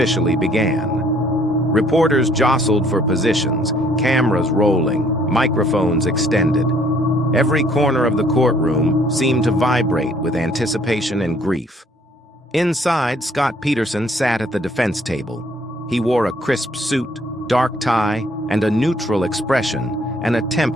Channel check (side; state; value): both; normal; correlation 0.62